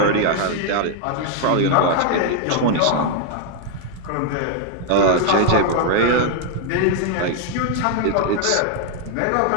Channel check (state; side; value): different; both; correlation 0.00